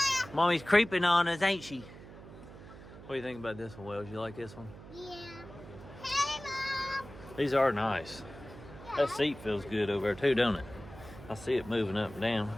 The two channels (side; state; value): right; noise; hum, 16 dB below the sound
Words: Mommy's creeping on us, ain't she? What do you think about this one, Wells? You like this one? Yeah. Hey, Mom. These are nice. That seat feels good over there too, don't it? I see it moving up and down.